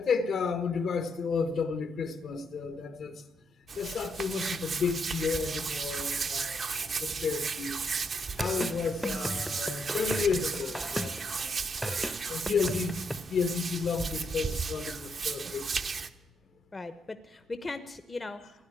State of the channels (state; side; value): normal; both; correlation 0.77